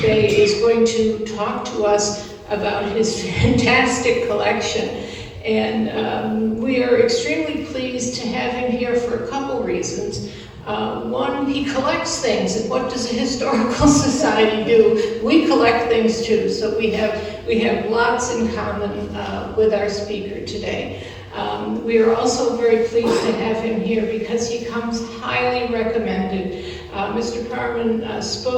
today is going to talk to us about his fantastic collection. And we are extremely pleased to have him here for a couple reasons. One, he collects things, and what does a historical society do? We collect things too, so we have lots in common with our speaker today. We are also very pleased to have him here because he comes highly recommended. Mr. Parmon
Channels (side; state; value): both; identical; correlation 1.00